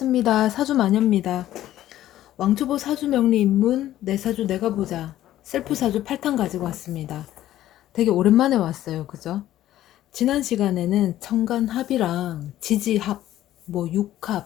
사주마녀입니다. 왕초보 사주명리 입문 내 사주 내가 보자 셀프 사주 8탄 가지고 왔습니다. 되게 오랜만에 왔어요. 그죠? 지난 시간에는 천간합이랑 지지합, 뭐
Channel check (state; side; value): quieter; right; 13.4 dB